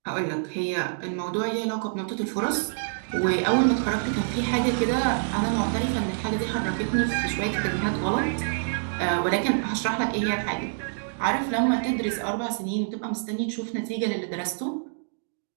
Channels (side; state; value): left; silent; digital silence